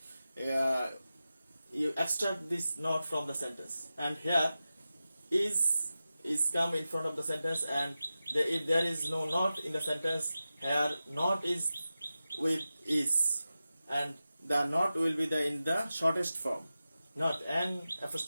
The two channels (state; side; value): inverted; both; correlation -0.93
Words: extract this not from the sentence. And here is come in front of the sentence, and if there is no not in the sentence, here not is with is, and the not will be in the shortest form, not n